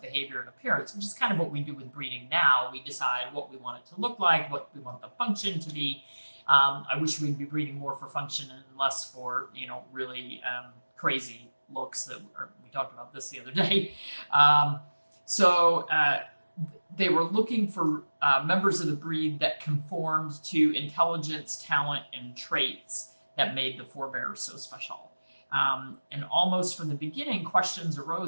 behavior and appearance, which is kind of what we do with breeding now. We decide what we want it to look like, what we want the function to be. I wish we'd be breeding more for function and less for, really crazy looks that we talked about this the other day. So they were looking for members of the breed that conformed to intelligence, talent, and traits that made the forebears so special. And almost from the beginning, questions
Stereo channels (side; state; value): both; inverted; correlation -1.00